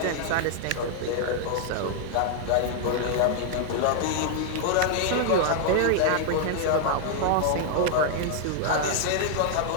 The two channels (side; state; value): both; different; correlation 0.00